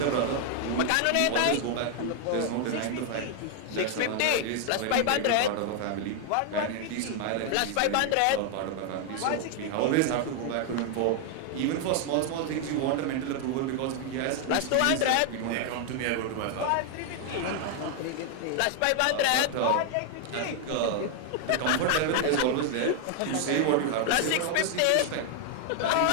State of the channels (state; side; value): different; both; correlation 0.00